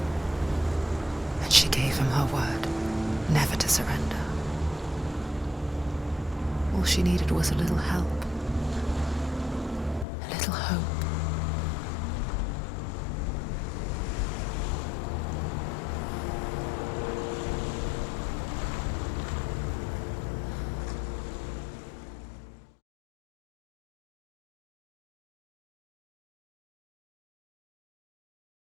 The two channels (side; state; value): right; drops out; at 10.1 s